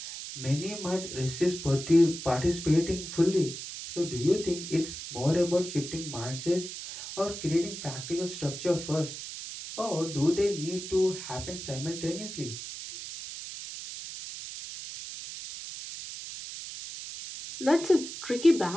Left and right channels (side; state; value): right; noise; hiss, 9 dB below the sound